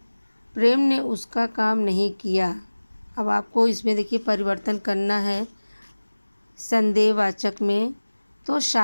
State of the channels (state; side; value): inverted; both; correlation -1.00